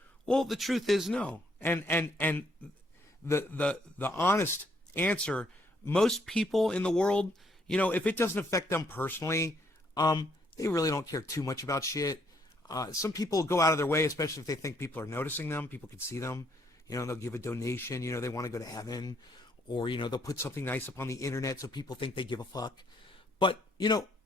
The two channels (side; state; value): both; normal; correlation 0.70